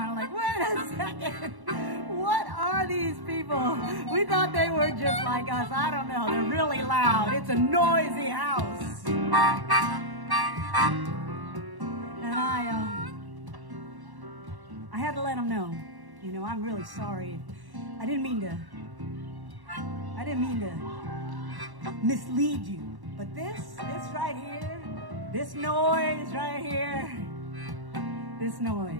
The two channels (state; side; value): late; left; 1.1 ms